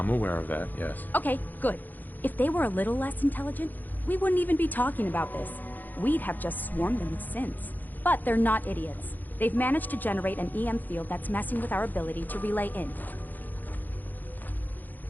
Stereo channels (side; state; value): right; late; 0.085 ms